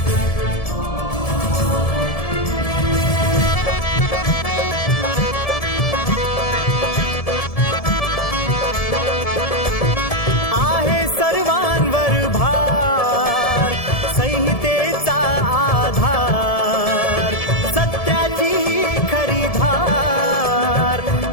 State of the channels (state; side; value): late; right; 1.7 ms